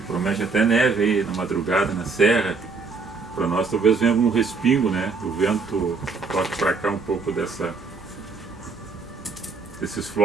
promete até neve aí na madrugada, na serra. Para nós talvez venha algum respingo, né? O vento toque para cá um pouco desses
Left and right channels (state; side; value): quieter; left; 4.4 dB